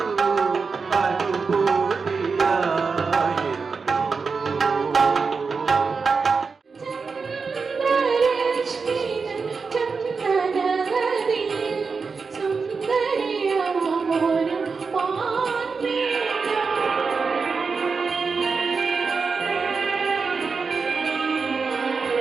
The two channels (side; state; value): left; quieter; 4.9 dB